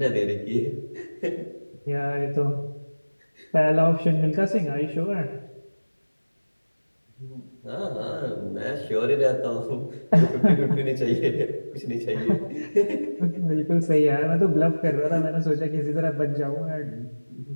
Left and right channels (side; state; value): both; inverted; correlation -1.00